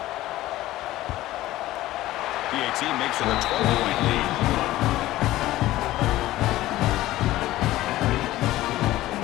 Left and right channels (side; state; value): right; quieter; 16.0 dB